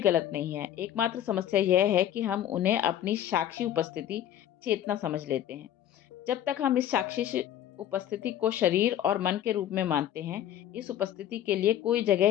गलत नहीं है। एकमात्र समस्या यह है कि हम उन्हें अपनी साक्षी उपस्थिति, चेतना समझ लेते हैं। जब तक हम इस साक्षी उपस्थिति को शरीर और मन के रूप में मानते हैं, इस उपस्थिति के लिए कोई जगह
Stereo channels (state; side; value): quieter; right; 11.3 dB